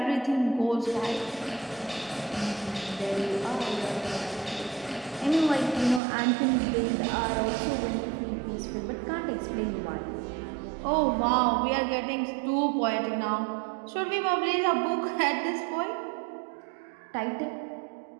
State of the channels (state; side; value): drops out; left; at 6.0 s